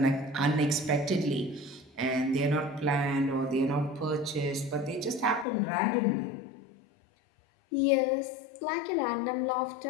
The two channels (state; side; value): drops out; right; at 5.5 s